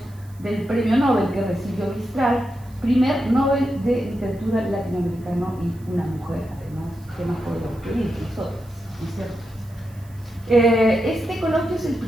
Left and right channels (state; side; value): noise; right; hiss, 28 dB below the sound